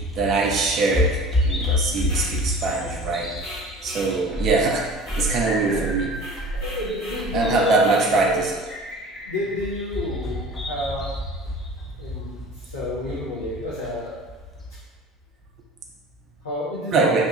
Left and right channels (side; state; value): both; normal; correlation 0.41